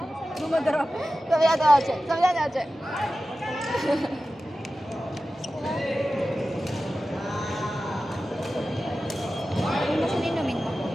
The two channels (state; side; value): normal; both; correlation 0.94